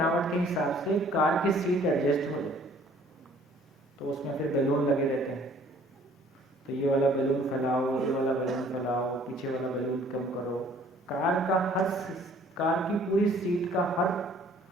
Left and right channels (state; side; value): normal; both; correlation 0.56